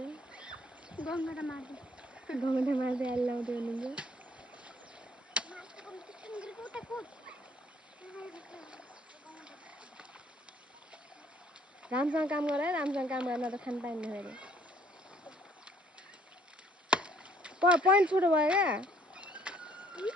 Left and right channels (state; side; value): normal; both; correlation 0.62